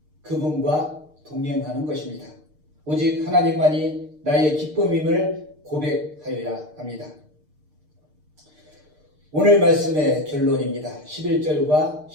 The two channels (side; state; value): left; late; 6.6 ms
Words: 그분과 동행하는 것입니다. 오직 하나님만이 나의 기쁨임을 고백하여야 합니다. 오늘 말씀의 결론입니다. 11절과